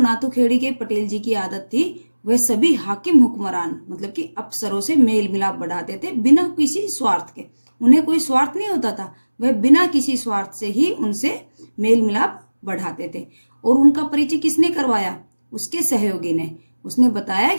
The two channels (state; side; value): inverted; both; correlation -1.00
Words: के पटेल जी की आदत थी वह सभी हाकिम हुक्मरान मतलब कि अफसरों से मेल मिलाप बढ़ाते थे बिना किसी स्वार्थ के। उन्हें कोई स्वार्थ नहीं होता था, वह बिना किसी स्वार्थ से ही उनसे मेल मिलाप बढ़ाते थे। और उनका परिचय किसने करवाया? उसके सहयोगी ने। उसने बताया